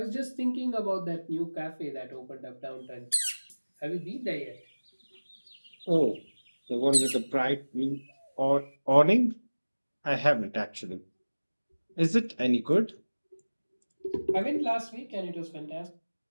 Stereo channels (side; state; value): both; inverted; correlation -1.00